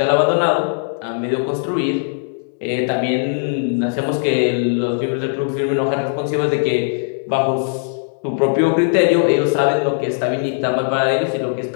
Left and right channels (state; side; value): silent; right; digital silence